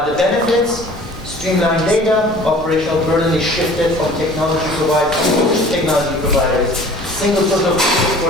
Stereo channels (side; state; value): both; normal; correlation 0.48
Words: The benefits, streamlined data, operational burden is shifted from technology providers. Single source of truth